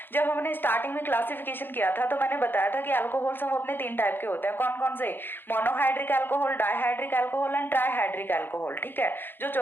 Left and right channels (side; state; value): right; late; 0.099 ms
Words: जब हमने स्टार्टिंग में क्लासिफिकेशन किया था तो मैंने बताया था कि अल्कोहल सब अपने 3 टाइप के होते हैं। कौन कौन से? Monohydric alcohol, dihydric alcohol and trihydric alcohol. ठीक है, जो